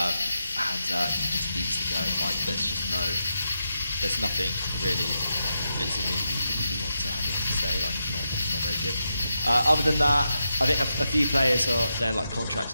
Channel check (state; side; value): inverted; both; correlation -0.86